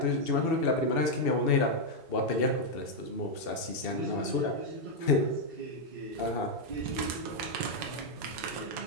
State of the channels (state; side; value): normal; both; correlation 0.00